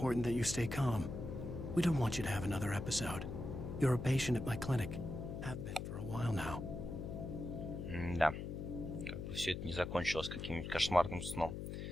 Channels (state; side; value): noise; left; hum, 6 dB below the sound